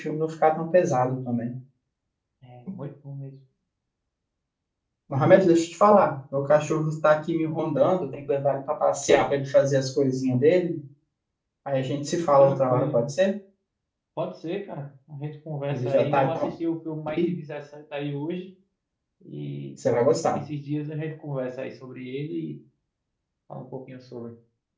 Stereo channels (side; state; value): both; identical; correlation 1.00